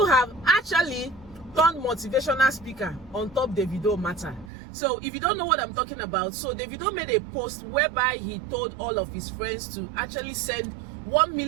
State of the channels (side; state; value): left; drops out; at 4.5 s